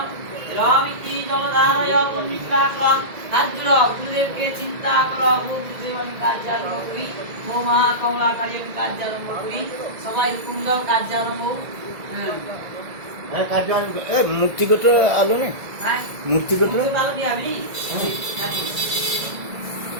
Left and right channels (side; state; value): left; late; 1.8 ms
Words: রামিতি জলধারয় পুণ্যিকাকরং হাত জুড়ো গুরুদেবকে চিন্তা করো গুরুদেব আমি কাজ আরম্ভ করি ও মহা কমলাকারী আমি কাজ আরম্ভ করি সবাই হুকুম দাও কাজ আরম্ভ হ্যাঁ কাজ মূর্তিগত আলো নেই হ্যাঁ মূর্তিগত ভালো কি আমি